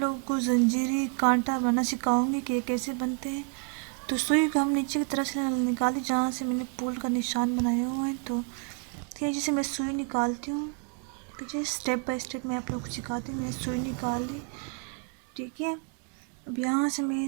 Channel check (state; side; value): quieter; left; 39.4 dB